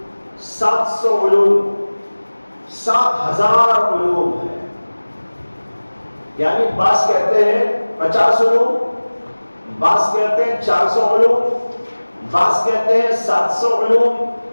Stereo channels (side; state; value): both; inverted; correlation -1.00